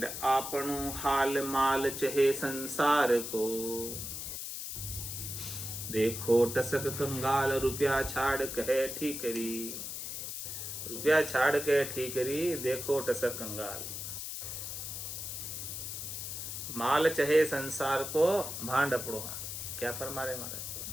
आपनो हाल माल चहे संसार को। देखो टसक कंगाल रुपया छाड़ कहे ठीकरी। रुपया छाड़ के ठीकरी, देखो टसक कंगाल। माल चहे संसार को, भांड अपड़ो हाल। क्या फरमा रहे महाराज?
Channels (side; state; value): left; noise; hiss, 6 dB below the sound